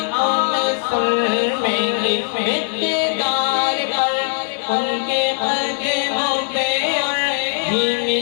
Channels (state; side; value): silent; right; 64 dB below the other